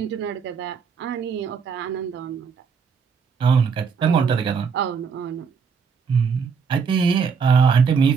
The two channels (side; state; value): left; quieter; 6.1 dB